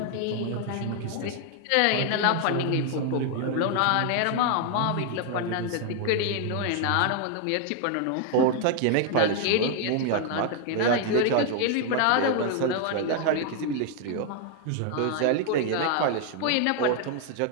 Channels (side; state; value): both; different; correlation 0.00